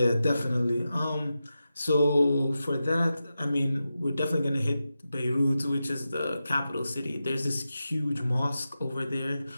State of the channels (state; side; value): inverted; both; correlation -0.91